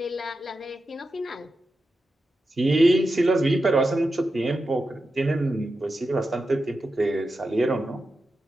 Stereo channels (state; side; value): normal; both; correlation 0.90